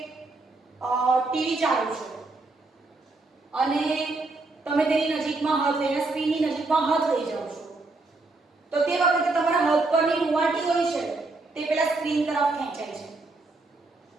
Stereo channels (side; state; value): left; quieter; 3.3 dB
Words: ટીવી ચાલુ છે અને તમે તેની નજીકમાં હાથ લઈને સ્ક્રીનની નજીકમાં હાથ લઈ જાઓ છો, તો તે વખતે તમારા હાથ પરની રૂંવાટી હોય છે તે પેલા સ્ક્રીન તરફ ખેંચાય છે.